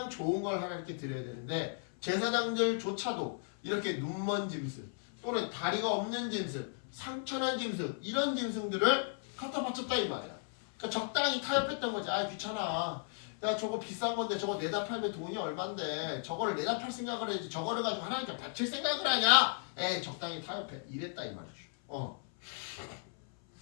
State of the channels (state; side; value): silent; right; 54 dB below the other